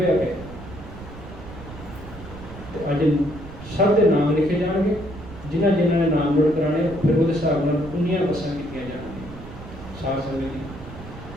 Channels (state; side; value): noise; right; rumble, 14 dB below the sound